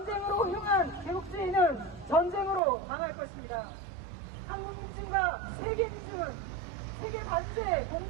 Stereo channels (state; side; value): drops out; left; at 2.6 s